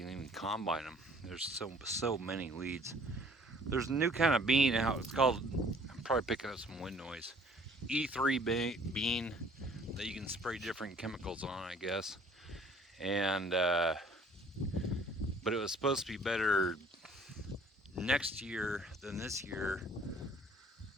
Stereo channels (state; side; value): normal; both; correlation 0.55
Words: even combine them. There's so many weeds. There's a new kind of bean out. It's called. I'm probably picking up some wind noise. E3 bean that you can spray different chemicals on, I guess. And but it was supposed to be better next year than this year.